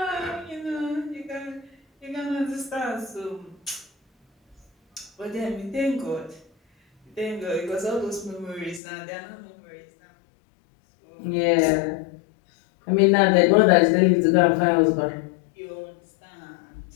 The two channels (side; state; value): right; drops out; at 8.8 s